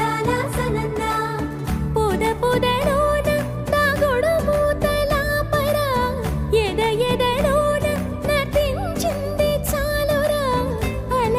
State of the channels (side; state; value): both; identical; correlation 1.00